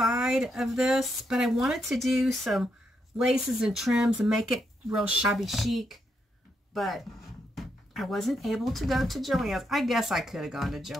of this, but I wanted to do some laces and trims and make it real shabby chic, but I wasn't able to go to Joann's. I guess I could have gone to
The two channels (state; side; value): normal; both; correlation 0.80